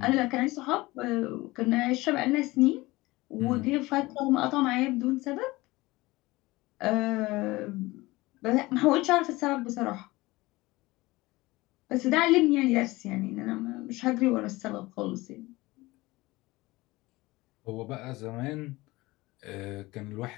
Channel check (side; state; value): right; quieter; 20.6 dB